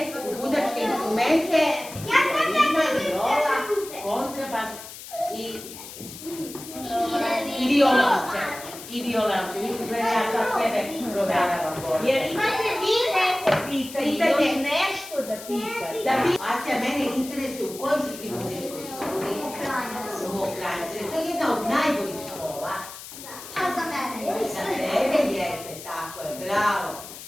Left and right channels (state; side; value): noise; left; hiss, 13 dB below the sound